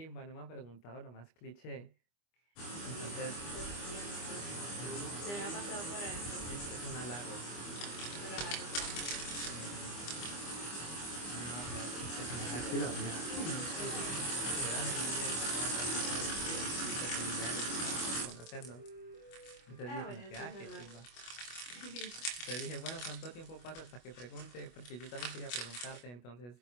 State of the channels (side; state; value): right; late; 25 ms